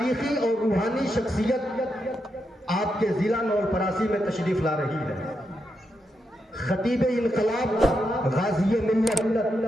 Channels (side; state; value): both; normal; correlation 0.84